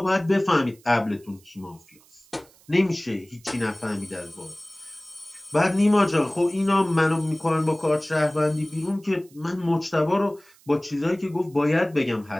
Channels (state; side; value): noise; right; hiss, 28 dB below the sound